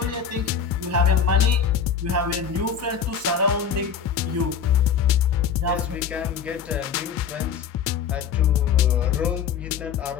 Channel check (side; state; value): right; quieter; 7.1 dB